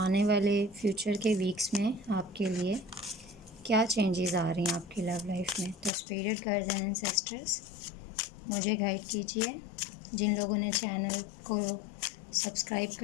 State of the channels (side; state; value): right; drops out; at 5.9 s